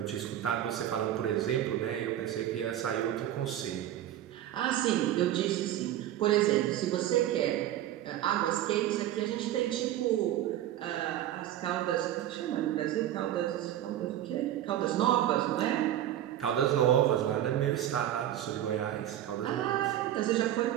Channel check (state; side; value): quieter; left; 12.2 dB